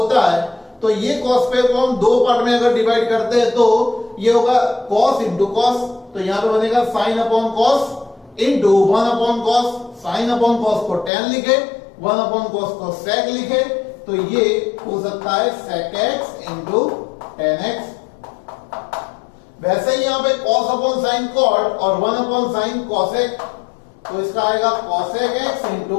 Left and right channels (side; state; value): right; drops out; at 11.1 s